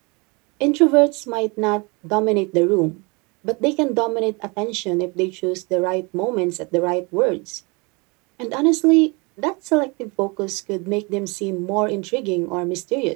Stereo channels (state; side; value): quieter; left; 28.9 dB